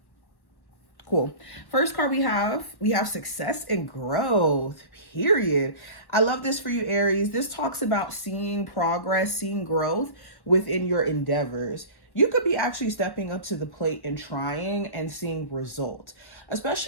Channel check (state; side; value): late; right; 1.1 ms